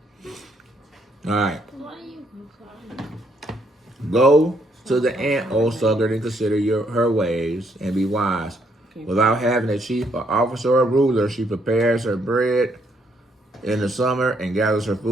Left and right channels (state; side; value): normal; both; correlation 0.72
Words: All right. Go to the ant, O sluggard, and consider her ways, and be wise. Without having a chief, an officer, or a ruler, she prepares her bread in the summer and gathers her